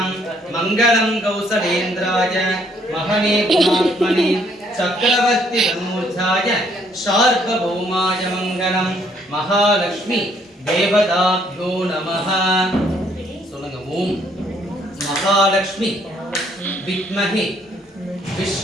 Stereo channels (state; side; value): normal; both; correlation 0.67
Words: मंगलम् कौसलेन्द्राय महने गुणात्मने चक्रवर्ती तनूजाय शार्वभौमाय मंगलम्. महालक्ष्मी देवताभ्यो नमः. சொல்லுங்க. ஓம் महालक्ष्मी विद्महे